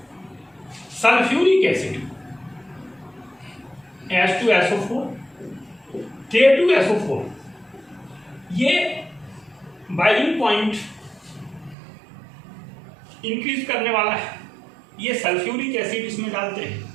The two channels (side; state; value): left; drops out; at 11.8 s